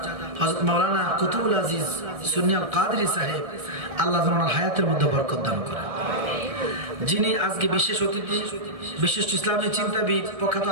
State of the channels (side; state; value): left; late; 1.6 ms